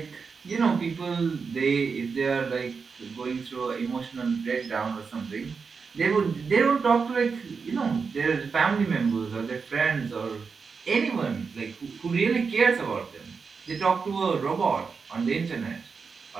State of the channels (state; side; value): quieter; left; 5.3 dB